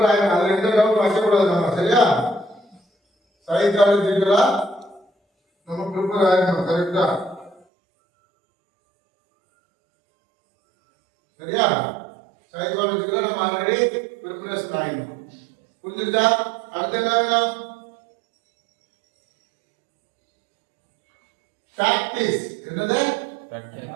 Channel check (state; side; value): drops out; left; at 7.6 s